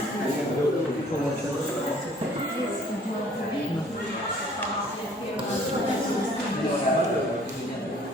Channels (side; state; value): both; normal; correlation 0.56